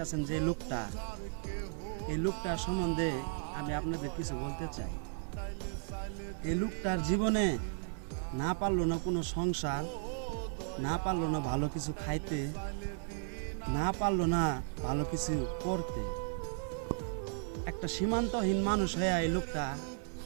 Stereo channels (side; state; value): left; silent; 54 dB below the other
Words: যে লোকটা, এই লোকটার সম্বন্ধে আমি আপনাদের কিছু বলতে চাই। এই লোকটার জীবনে না পারলো না কোনো সংসার, না পারলো না ভালো কিছু খাইতে, না পারলো না ভালো কিছু করতে। একটা সীমান্তহীন মানুষ হয়ে এই লোকটা